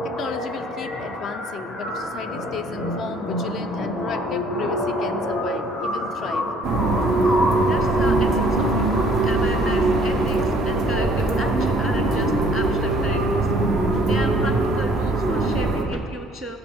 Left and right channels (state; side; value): normal; both; correlation 0.58